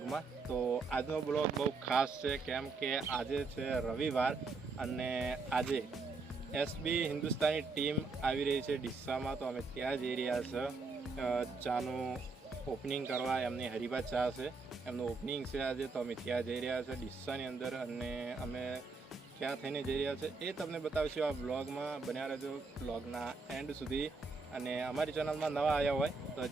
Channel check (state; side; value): quieter; left; 4.1 dB